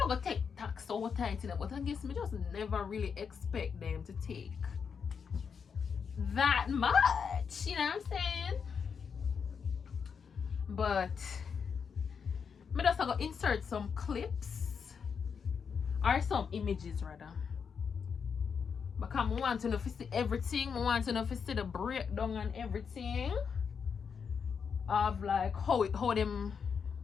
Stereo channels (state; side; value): quieter; right; 6.4 dB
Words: gonna take tax so tight, but I guess me just never really expect them to take that much. You know what I'm saying? But me just gonna insert some clips or some images rather. Because I want to know if you see everything. I want to know if you see the breakdown and everything of like how them